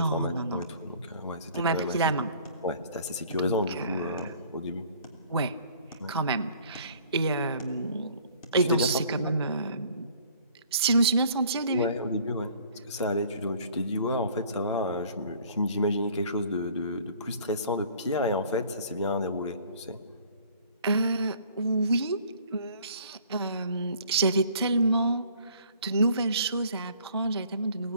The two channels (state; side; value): inverted; both; correlation -0.54